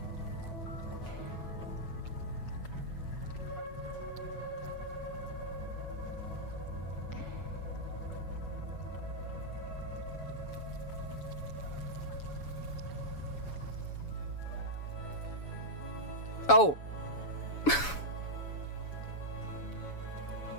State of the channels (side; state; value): right; late; 7.0 ms